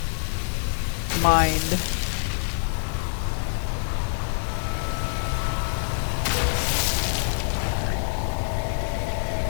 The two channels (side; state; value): right; silent; digital silence